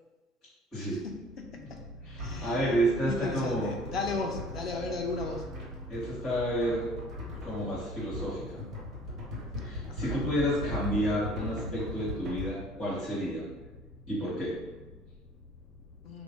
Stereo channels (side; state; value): both; normal; correlation 0.51